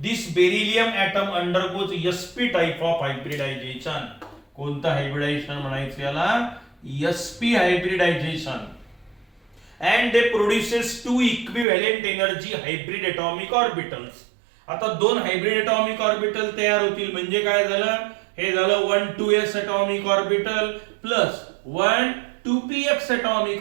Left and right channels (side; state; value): left; drops out; at 11.7 s